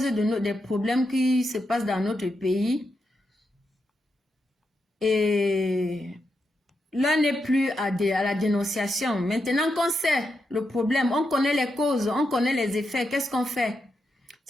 des problèmes qui se passent dans notre pays. Et l'un n'est plus à la dénonciation. Maintenant qu'on sait le problème, on connaît les causes, on connaît les effets, qu'est-ce qu'on fait?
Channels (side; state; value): both; normal; correlation 0.85